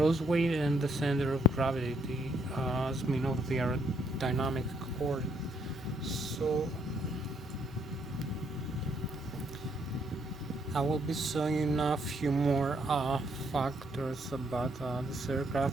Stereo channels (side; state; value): both; normal; correlation 0.70